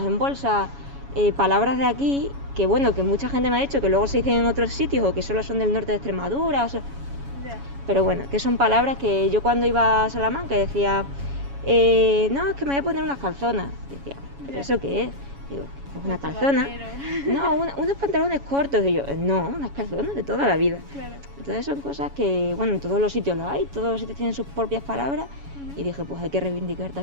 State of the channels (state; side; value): late; left; 7.2 ms